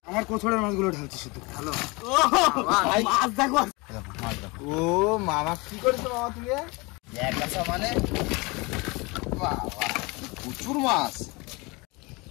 আমার কোছড়ের মাছগুলো ঢালছি শুধু। হ্যালো মাছ দেখো। ও মামা কি করেছো মামা তুমি? এক গাছা মানে প্রচুর মাছ।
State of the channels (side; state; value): right; quieter; 26.0 dB